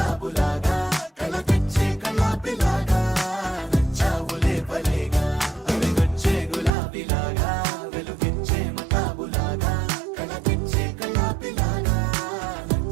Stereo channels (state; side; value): drops out; left; at 6.7 s